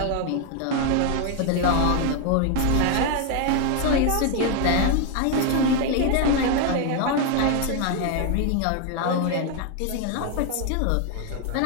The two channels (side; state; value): both; different; correlation 0.01